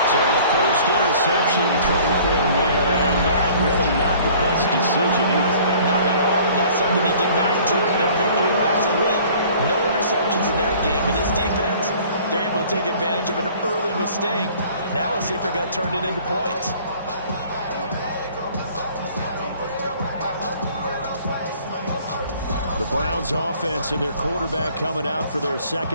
So the first interception thrown for him there, and that really not the best decision either. Not at all, and that's something he did not do in their victory last week. No interceptions in that game, but this defense, they're able to take advantage of an early mistake. Now let's see if they're going to turn it into points. The Browns offense and their quarterback coming out for their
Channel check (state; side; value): inverted; both; correlation -0.52